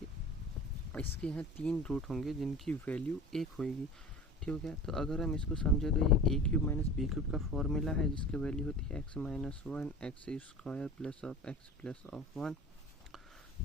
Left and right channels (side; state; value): both; normal; correlation 0.37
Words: इसके यहाँ 3 रूट होंगे जिनकी वैल्यू 1 होगी। ठीक है, तो अगर हम इसको समझे तो ये ए क्यूब माइनस बी क्यूब का फॉर्मूला है जिसकी वैल्यू होती है x minus one x square plus of x plus of 1।